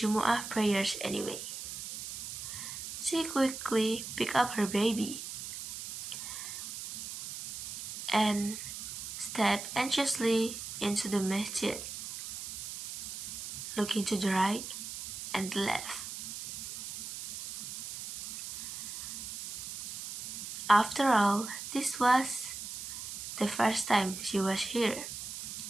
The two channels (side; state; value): right; noise; hiss, 8 dB below the sound